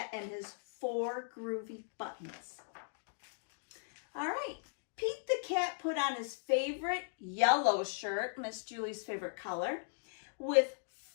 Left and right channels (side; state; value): right; silent; digital silence